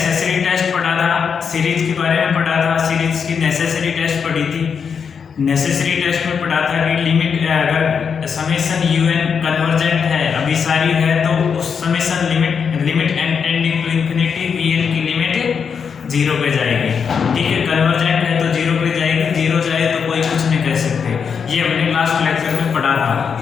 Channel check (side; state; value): right; quieter; 6.5 dB